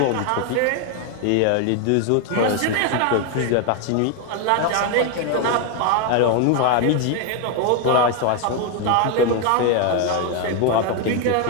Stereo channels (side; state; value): both; different; correlation 0.01